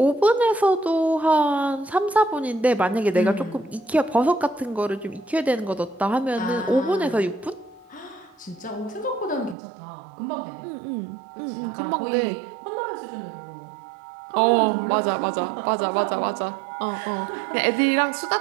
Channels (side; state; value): left; drops out; at 9.6 s